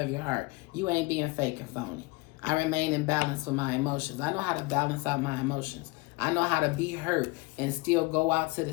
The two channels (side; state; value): right; quieter; 24.1 dB